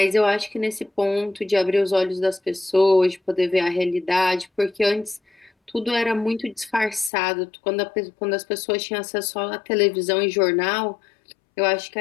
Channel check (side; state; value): right; drops out; at 7.1 s